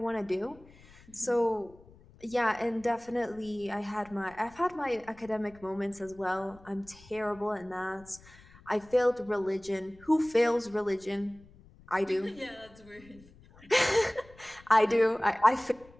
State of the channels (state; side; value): noise; left; rumble, 24 dB below the sound